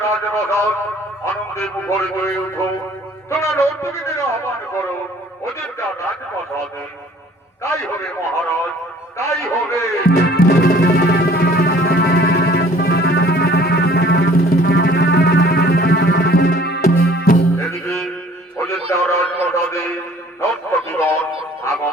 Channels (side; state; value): both; normal; correlation 0.53